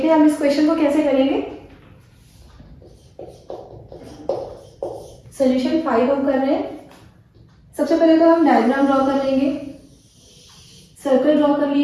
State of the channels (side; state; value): both; identical; correlation 1.00